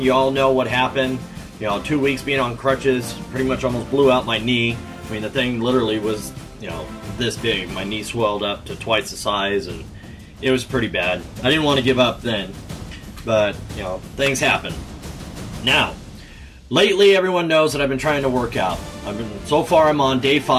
all know what happened. 2 weeks being on crutches, pretty much almost blew out my knee. I mean, the thing literally was, this big. My knee swelled up to twice the size, and it was pretty bad. I didn't want to give up then, but, things happen. Now, lately everyone knows that I've been trying to work out. So far I'm on day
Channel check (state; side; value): identical; both; correlation 1.00